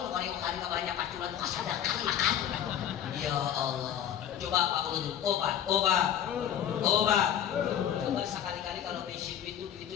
kali kapalanya paculan kasadakan makan. Ya Allah. Coba Pak Ulun, obat. Coba sekali-kali kalau besi duit itu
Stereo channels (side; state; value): right; quieter; 9.8 dB